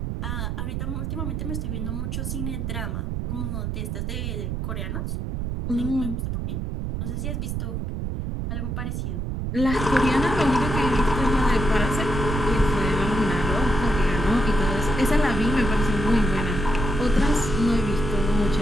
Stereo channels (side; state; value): right; noise; rumble, 2 dB below the sound